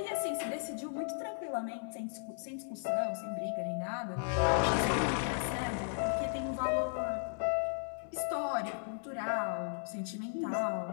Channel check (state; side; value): silent; right; 54 dB below the other